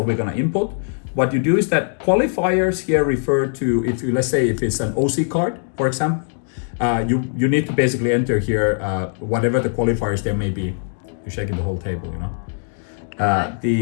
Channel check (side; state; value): right; silent; digital silence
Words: we're gonna input. What you do is that qualifiers here refer to, if you, let's say if it's an OC card, for example, you need to basically enter here whatever the qualifiers there may be. You're shaking the whole table, you know. But